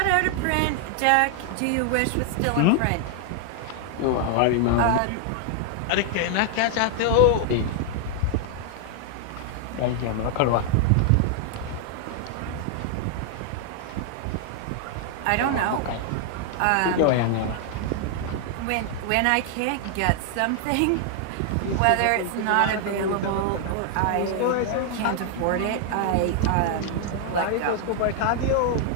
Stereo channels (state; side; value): different; both; correlation 0.00